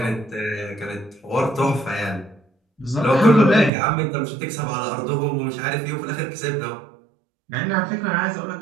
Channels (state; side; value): drops out; left; at 3.7 s